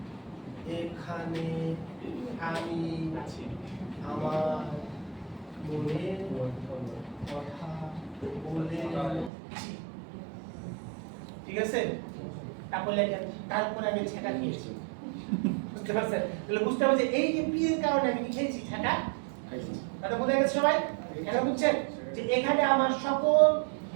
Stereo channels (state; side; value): drops out; left; at 9.3 s